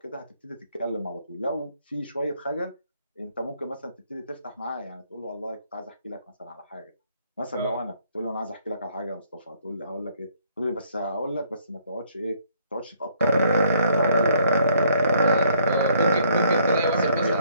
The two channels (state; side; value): inverted; both; correlation -0.65